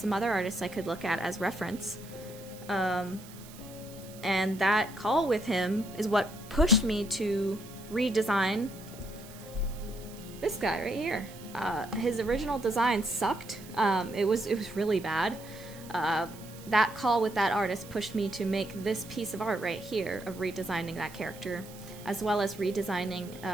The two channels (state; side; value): noise; right; hiss, 19 dB below the sound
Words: other artists I could look at as reference. And that call with him is what pushed me to redesign this guy right here. His original design sucked. It was really bad. That call with that artist pushed me to make this piece of art right here of redesigning that character, as well as redesigning